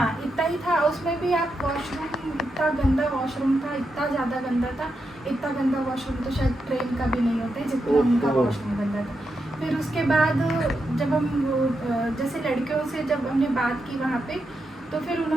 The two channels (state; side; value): normal; both; correlation 0.85